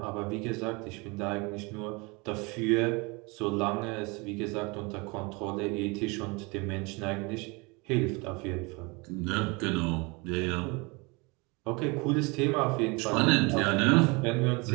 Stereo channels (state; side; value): quieter; left; 27.6 dB